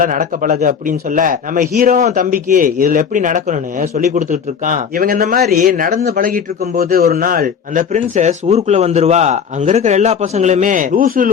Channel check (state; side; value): quieter; right; 7.0 dB